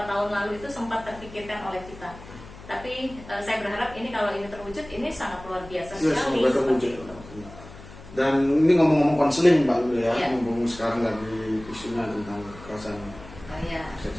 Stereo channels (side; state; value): left; noise; hum, 17 dB below the sound